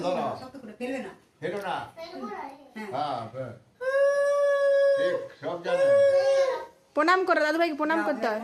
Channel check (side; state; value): both; identical; correlation 1.00